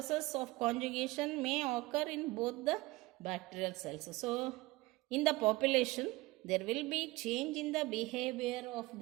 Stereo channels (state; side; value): quieter; left; 20.8 dB